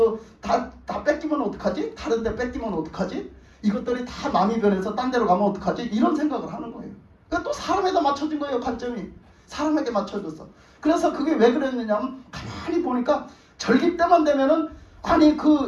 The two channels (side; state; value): both; identical; correlation 1.00